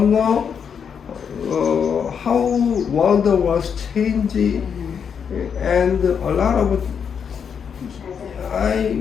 know how world was changing, and a lot of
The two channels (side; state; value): right; quieter; 7.1 dB